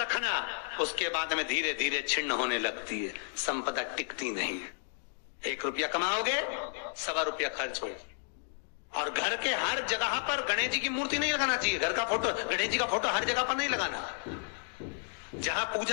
उसके बाद में धीरे धीरे छिन्न होने लगती है, संपदा टिकती नहीं है। 1 रुपया कमाओगे, 1.25 रुपया खर्च हो। और घर के हर जगह पर गणेश जी की मूर्ति नहीं लगाना चाहिए, घर का फोटो, गणेश जी का फोटो हर जगह पर नहीं लगाना। जहां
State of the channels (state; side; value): silent; right; digital silence